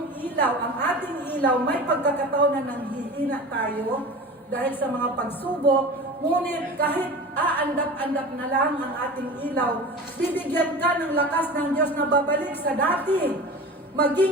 ilaw, ang ating ilaw, may pagkakataon na nanghihina tayo dahil sa mga pagsubok, ngunit kahit aandap-andap na lang ang ating ilaw, bibigyan ka ng lakas ng Diyos na babalik sa dati.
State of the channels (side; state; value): both; normal; correlation 0.34